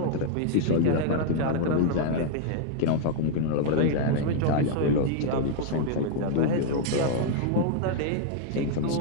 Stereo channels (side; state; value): both; different; correlation 0.00